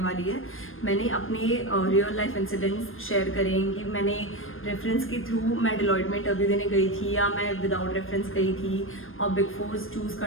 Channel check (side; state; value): right; late; 0.59 ms